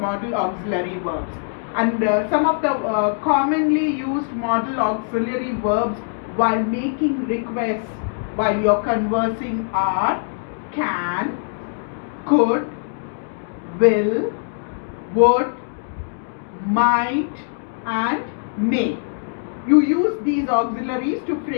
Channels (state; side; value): silent; right; digital silence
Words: modal auxiliary verbs. And some of the commonly used modal auxiliary verbs while making requests while you're conversing are can, could, will, would, might, and may. You use these auxiliaries to